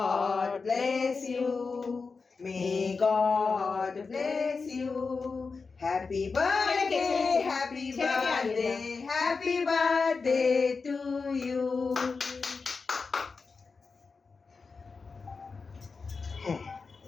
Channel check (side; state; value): right; quieter; 4.6 dB